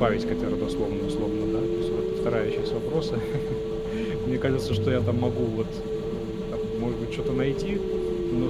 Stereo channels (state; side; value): identical; both; correlation 1.00